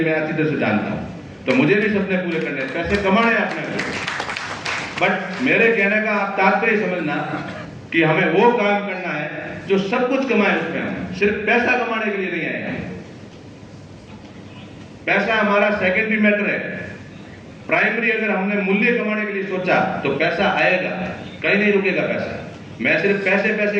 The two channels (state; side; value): identical; both; correlation 1.00